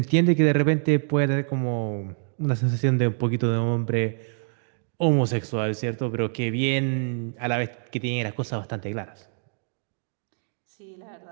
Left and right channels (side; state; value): left; silent; digital silence